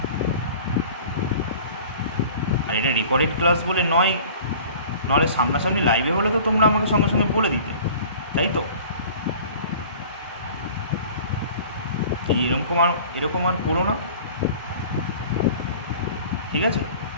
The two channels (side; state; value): both; inverted; correlation -0.44